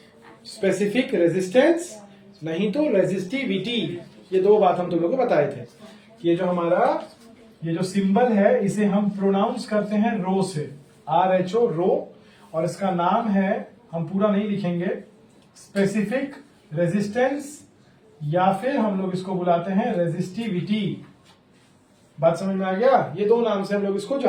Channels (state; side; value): identical; both; correlation 1.00